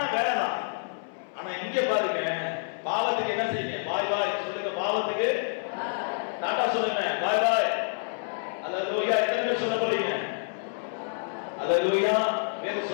வேலை தான். ஆனா இங்க பாருங்க, பாவத்துக்கு என்ன செய்யுங்க? பாய் பாய் சொல்லுங்க. பாவத்துக்கு டாடா சொல்லுங்க, பாய் பாய். அல்லேலூயா. எத்தனை பேர் சொல்ல போறீங்க? அல்லேலூயா. வேற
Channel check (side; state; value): right; silent; 59 dB below the other